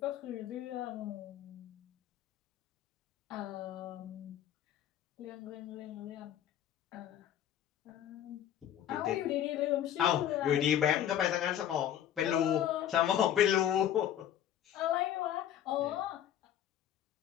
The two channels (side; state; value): right; quieter; 10.9 dB